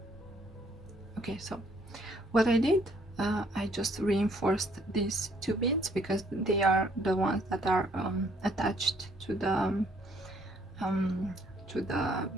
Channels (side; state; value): both; normal; correlation 0.65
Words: Okay, so what I did, I just reinforced these two beads because they are the ones that are attached to the